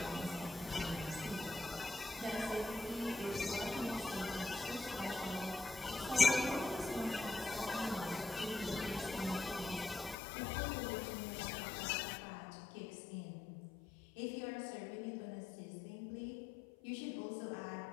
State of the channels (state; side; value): drops out; right; at 10.2 s